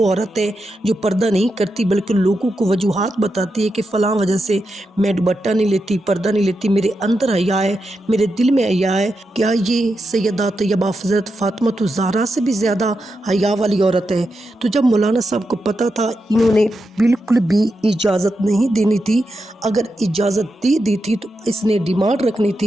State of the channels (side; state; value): both; normal; correlation 0.87